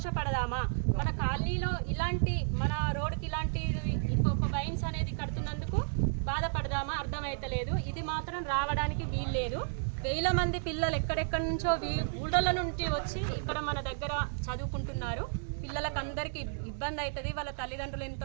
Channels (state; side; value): silent; left; digital silence